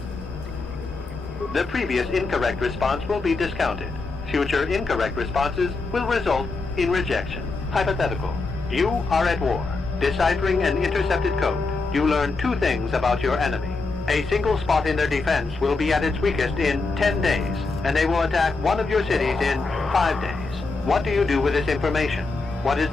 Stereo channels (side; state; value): right; quieter; 3.8 dB